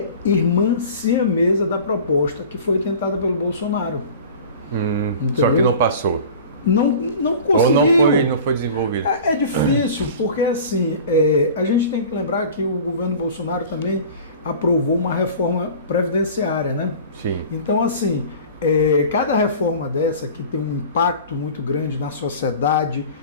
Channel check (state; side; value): inverted; both; correlation -0.40